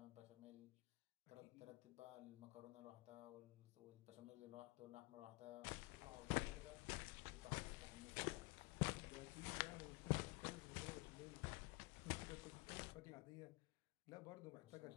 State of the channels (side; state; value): right; quieter; 24.8 dB